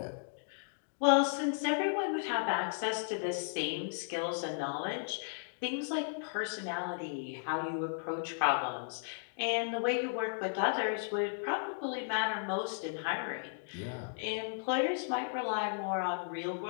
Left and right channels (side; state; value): right; silent; digital silence